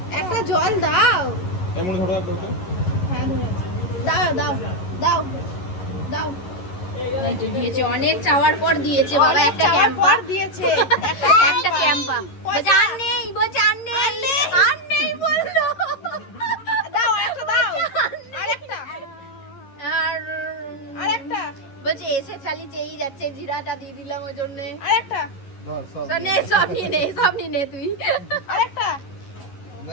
একটা জল দাও। এমন ধরো একটা ওটা। হ্যাঁ দাও দাও দাও দাও। দিয়েছে অনেক চাওয়ার পর দিয়েছে বাবা, একটা চাওয়ার ক্যাম্পা পর দিয়েছে একটা ক্যাম্পা। বলছে আর নেই, বলছে আর নেই বললো। দাও একটা দাও। আরেকটা আর আরেকটা বলছে এসে চালি চেয়েই যাচ্ছে, জিরাটা দিয়ে দিলাম ওই জন্যে। আরেকটা তো নে, সব নিয়ে নে তুই। আরেকটা না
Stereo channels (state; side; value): late; right; 11 ms